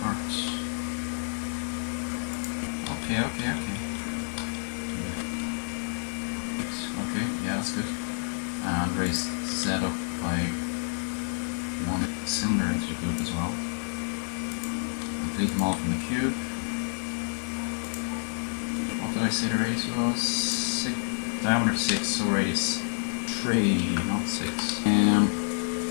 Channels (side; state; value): right; silent; 59 dB below the other